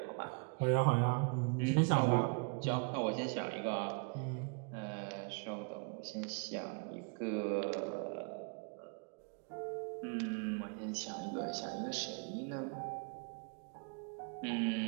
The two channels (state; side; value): quieter; left; 36.7 dB